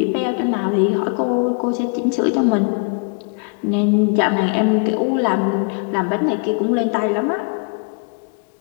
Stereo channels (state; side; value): quieter; right; 38.7 dB